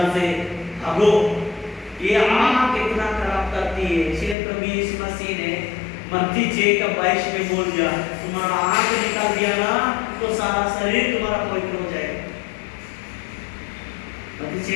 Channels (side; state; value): right; drops out; at 4.4 s